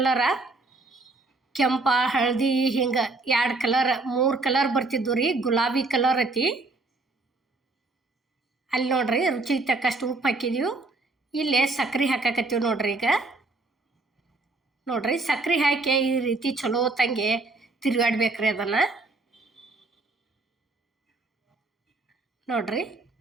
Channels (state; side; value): quieter; left; 3.3 dB